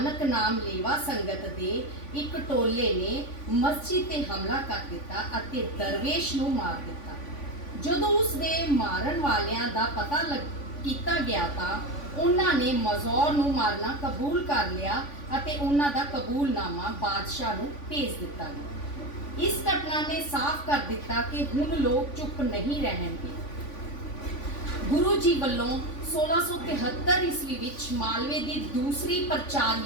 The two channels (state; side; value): late; right; 3.5 ms